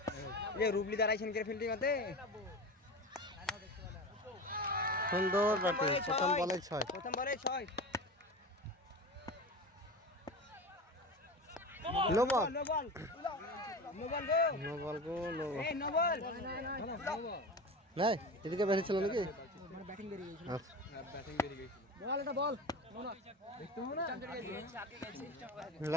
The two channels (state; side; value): normal; both; correlation 0.29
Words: এই রুবলি দাঁড়াইছেন কে ফিল্ডিং হতে সুন্দর ব্যাটিং প্রথম বলে 6 প্রথম বলে 6 no ball no ball no ball go no ball go no ball এই নো বল নাই এদিকে বেরিয়ে ছিল নাকি মানে ব্যাটিং বেরিয়ে গেছিল আচ্ছা ব্যাটিং বেরিয়ে গেছিল বল এটা বল দেখতে হবে না